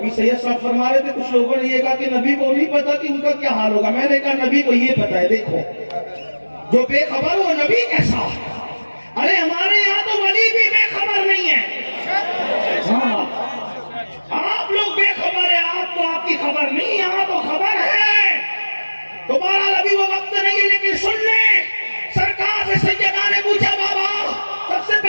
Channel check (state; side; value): inverted; both; correlation -1.00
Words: سید صاحب فرما رہے تھے کچھ لوگوں نے یہ کہا کہ نبی کو نہیں پتا کہ ان کا کیا حال ہوگا. میں نے کہا نبی کو یہ پتا ہے. دیکھو جو بے خبر وہ نبی کیسا؟ ارے ہمارے یہاں تو ولی بھی بے خبر نہیں ہے. ہاں آپ لوگ بے خبر ہیں, آپ کو آپ کی خبر نہیں, یہاں تو خبر ہے. تو بہرحال ابھی وہ وقت نہیں ہے, لیکن سن لیں سرکار سے سیدہ نے پوچھا بابا سب سے